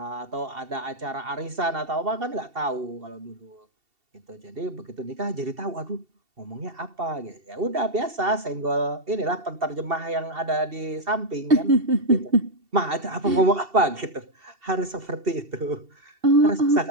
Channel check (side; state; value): left; late; 2.7 ms